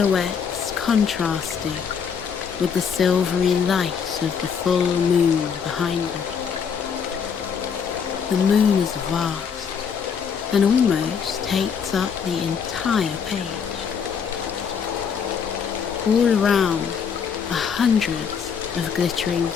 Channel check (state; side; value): quieter; right; 6.8 dB